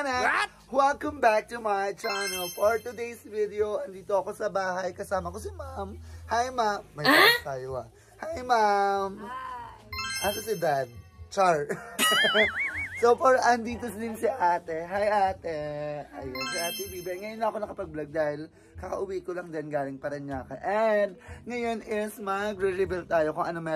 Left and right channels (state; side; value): identical; both; correlation 1.00